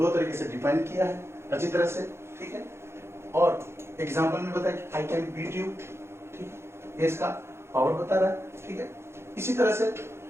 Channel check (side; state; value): left; late; 0.12 ms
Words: तरीके से define किया है अच्छी तरह से, ठीक है। और एग्जांपल में बताया कि आई कैन बीट यू, ठीक है, ये इसका पावर बता रहा है, ठीक है। इसी तरह से